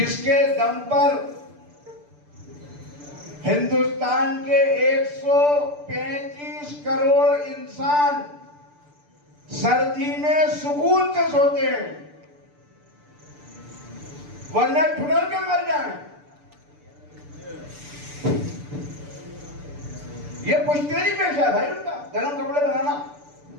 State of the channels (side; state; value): left; late; 6.8 ms